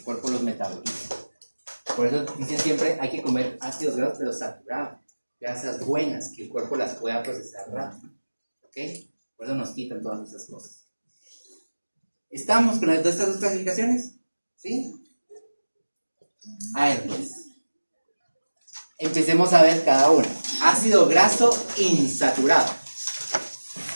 cuerpo los metabolice. Por eso dicen siempre hay que comer ácidos grasos pero saturados, grasas buenas, que el cuerpo las pueda procesar rápido. ¿Ok? Por eso nos quitan todas esas cosas. ¿Estamos con estas dos clasificaciones? ¿Sí? A ver, pues. Empecemos a ver cada una. Ácido graso insaturado.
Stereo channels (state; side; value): inverted; both; correlation -1.00